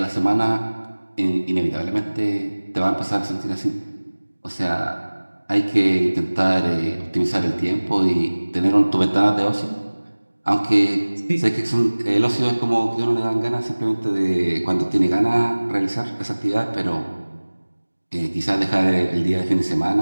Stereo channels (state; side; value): inverted; both; correlation -1.00